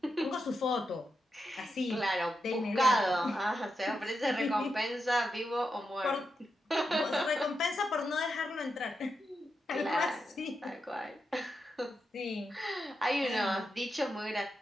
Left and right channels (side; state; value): both; normal; correlation 0.87